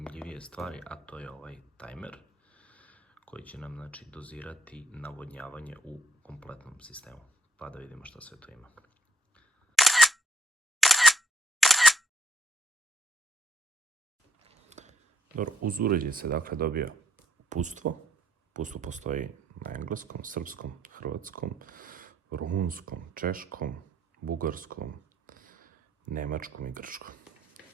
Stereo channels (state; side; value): normal; both; correlation 0.66